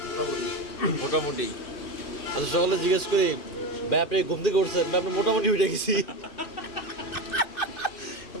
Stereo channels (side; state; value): right; late; 2.5 ms